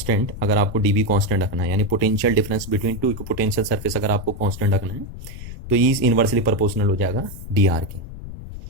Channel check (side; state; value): left; noise; rumble, 11 dB below the sound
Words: अगर आपको डी बी कॉन्स्टेंट रखना है, यानी potential difference between two equipotential surface अगर आपको कॉन्स्टेंट रखना है तो ई इज इनवर्सली प्रोपोर्शनल हो जाएगा डी आर के।